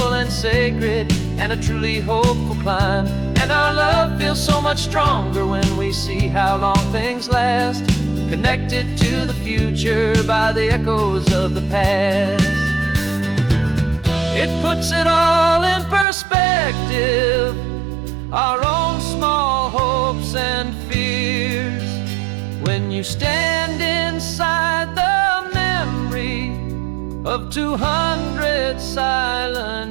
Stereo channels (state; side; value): drops out; left; at 16.1 s